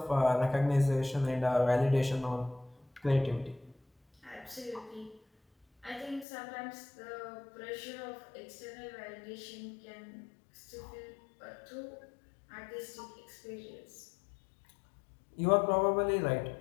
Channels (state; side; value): drops out; right; at 6.2 s